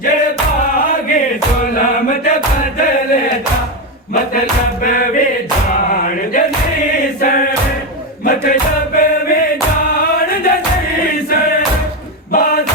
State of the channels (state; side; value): normal; both; correlation 0.11